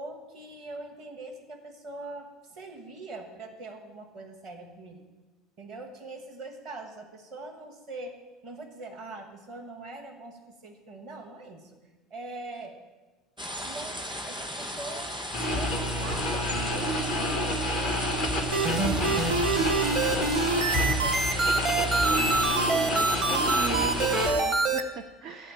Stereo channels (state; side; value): normal; both; correlation 0.38